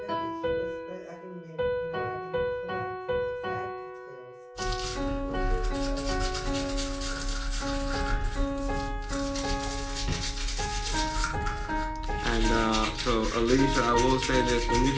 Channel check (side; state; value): both; identical; correlation 1.00